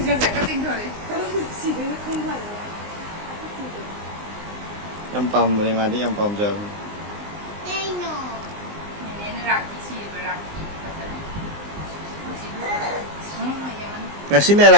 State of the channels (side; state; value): left; late; 19 ms